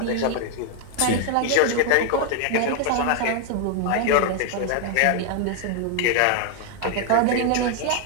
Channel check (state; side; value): different; both; correlation 0.00